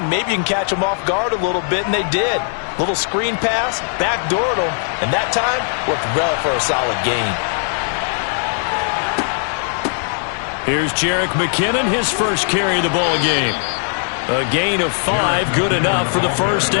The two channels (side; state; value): right; silent; digital silence